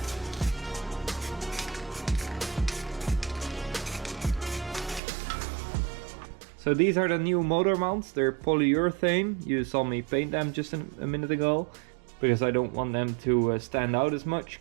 So these are the new motor mounts. They're polyurethane. You saw me paint them just a minute ago, because I don't want them to stand out as much,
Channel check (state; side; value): drops out; left; at 5.0 s